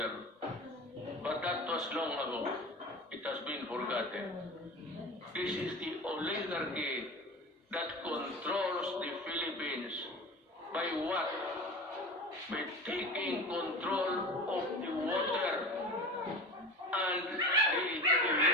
But that was long ago. It has been forgotten. This is the oligarchy that controls the Philippines. By what? By taking control of the water and the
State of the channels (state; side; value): normal; both; correlation 0.33